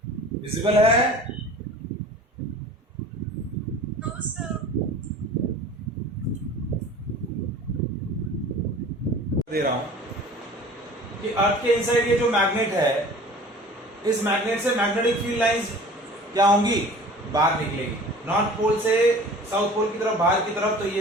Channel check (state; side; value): normal; both; correlation 0.43